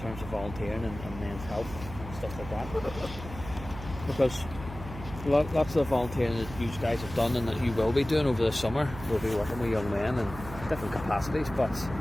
terms of volunteering and men's health and stuff like that. Because lots of volunteering that you guys have done and that you will be doing over the summer will be working with young men in different capacities, but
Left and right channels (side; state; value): right; noise; hum, 12 dB below the sound